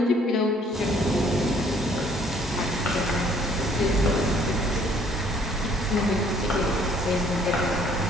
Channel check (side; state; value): both; normal; correlation 0.61